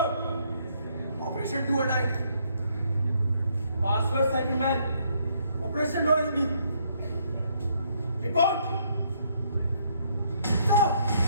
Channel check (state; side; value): inverted; both; correlation -0.70